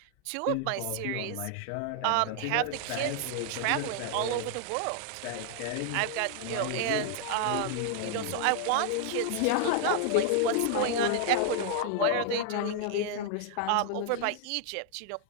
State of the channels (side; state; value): both; different; correlation 0.00